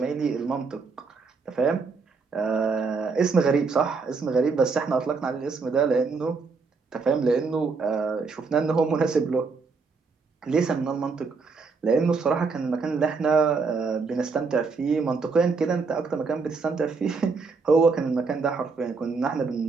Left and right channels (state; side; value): quieter; left; 4.6 dB